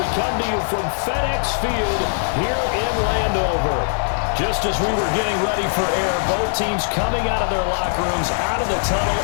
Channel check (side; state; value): right; silent; 65 dB below the other